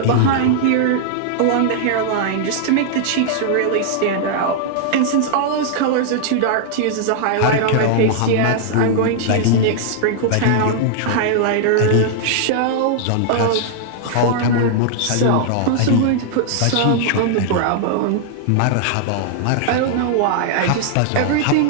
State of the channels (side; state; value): both; different; correlation -0.01